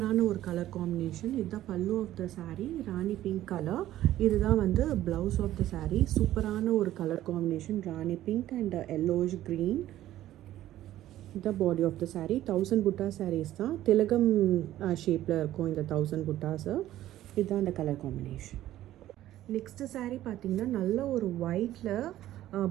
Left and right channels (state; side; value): quieter; left; 13.7 dB